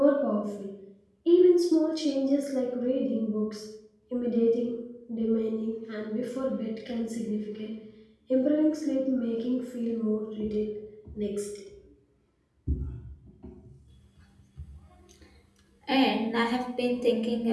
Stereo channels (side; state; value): both; identical; correlation 1.00